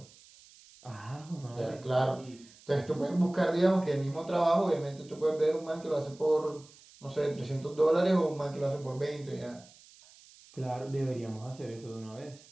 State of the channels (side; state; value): right; noise; hiss, 24 dB below the sound